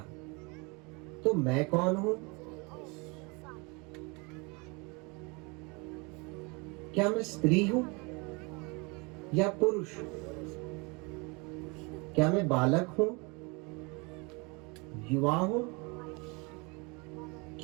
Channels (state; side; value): quieter; left; 29.1 dB